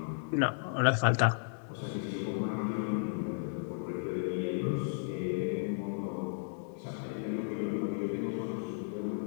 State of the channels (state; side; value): silent; right; 55 dB below the other